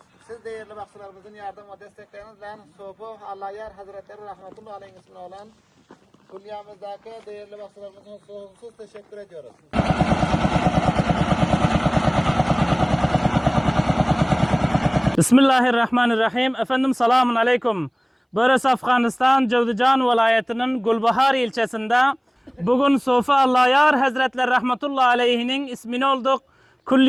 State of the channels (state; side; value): identical; both; correlation 1.00